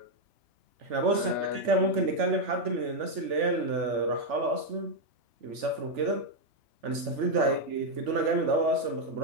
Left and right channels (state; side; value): late; left; 3.4 ms